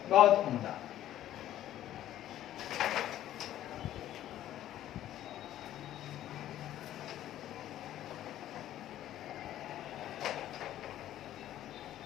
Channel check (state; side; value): quieter; right; 12.6 dB